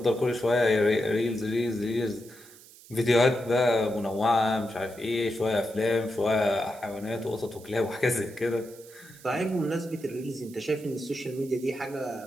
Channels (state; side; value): noise; right; hiss, 21 dB below the sound